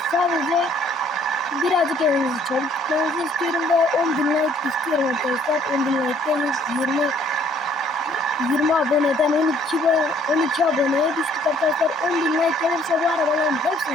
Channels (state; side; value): normal; both; correlation 0.61